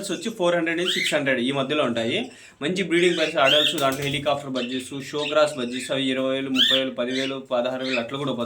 వచ్చి 400 నుంచి 600 ఈ మధ్యలో ఉంటాయి. మంచి బ్రీడింగ్ ప్రైస్ అడల్ట్స్, దాంట్లో హెలికాప్టర్ బడ్జెస్, షో క్రాస్ బడ్జెస్ అవి 20,000, 30,000, 10,000, 16,000 అట్లా కూడా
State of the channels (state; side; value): identical; both; correlation 1.00